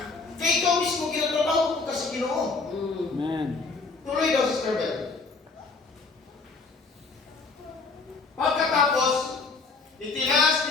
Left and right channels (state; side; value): quieter; right; 4.2 dB